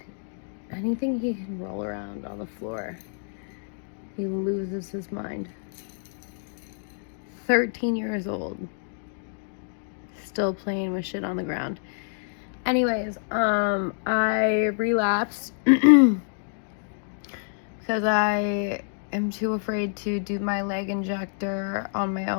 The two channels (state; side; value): silent; right; digital silence